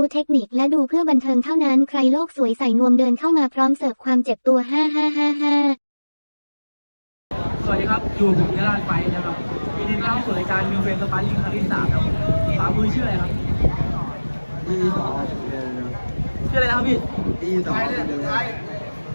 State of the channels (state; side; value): inverted; both; correlation -1.00